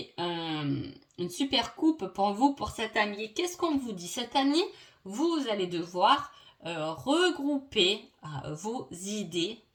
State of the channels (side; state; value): both; identical; correlation 1.00